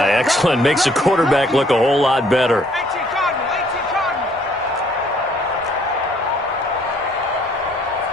excellent. Makes the quarterback look a whole lot better.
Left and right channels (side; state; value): both; normal; correlation 0.62